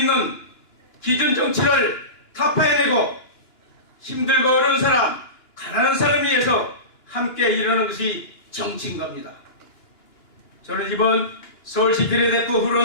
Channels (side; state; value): right; late; 2.9 ms